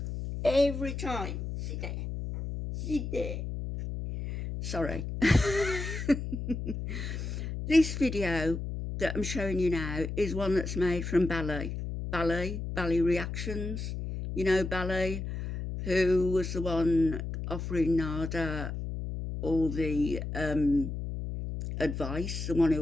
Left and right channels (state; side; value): noise; left; hum, 5 dB below the sound